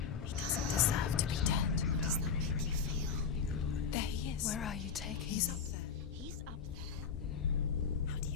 He doesn't deserve to be dead. How does that make you feel? There he is. Where are you taking He's me? up there. He's up there. How do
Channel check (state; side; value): quieter; right; 6.3 dB